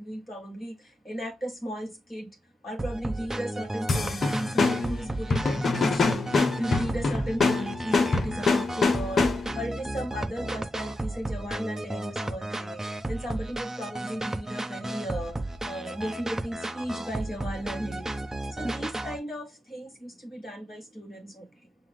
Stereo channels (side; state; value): both; normal; correlation 0.88